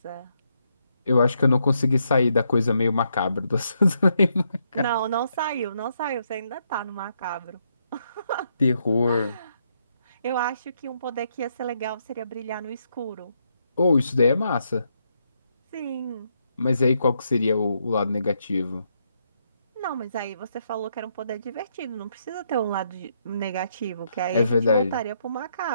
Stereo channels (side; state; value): both; inverted; correlation -0.77